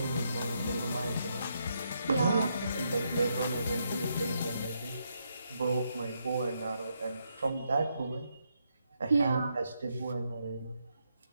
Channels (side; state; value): both; inverted; correlation -0.79